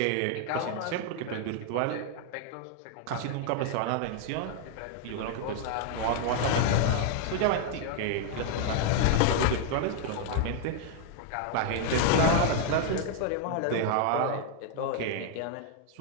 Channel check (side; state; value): both; different; correlation 0.00